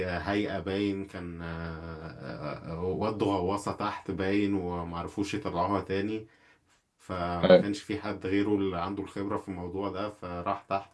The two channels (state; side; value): identical; both; correlation 1.00